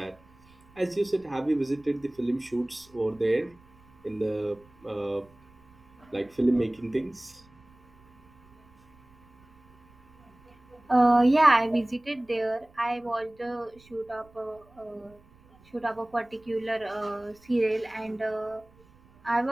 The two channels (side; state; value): right; noise; rumble, 29 dB below the sound